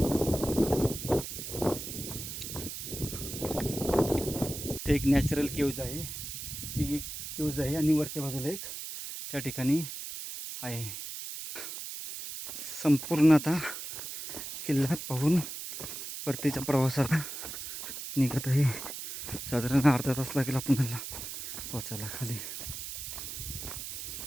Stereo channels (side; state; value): right; noise; hiss, 7 dB below the sound